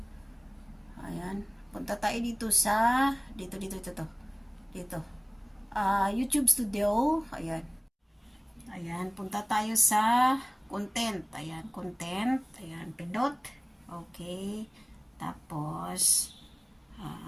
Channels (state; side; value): identical; both; correlation 1.00